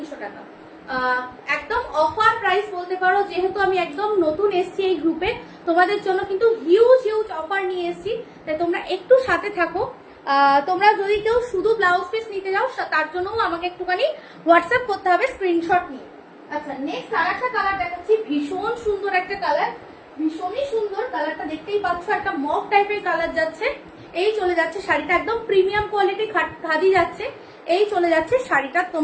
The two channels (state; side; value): identical; both; correlation 1.00